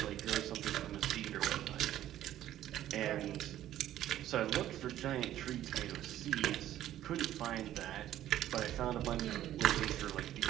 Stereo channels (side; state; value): left; quieter; 12.6 dB